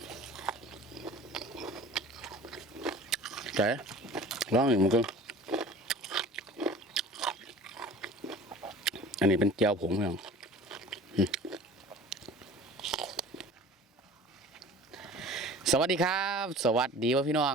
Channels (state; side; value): normal; both; correlation 0.43